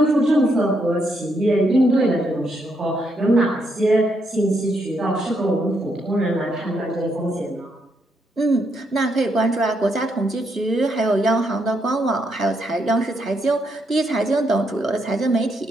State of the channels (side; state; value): both; normal; correlation 0.77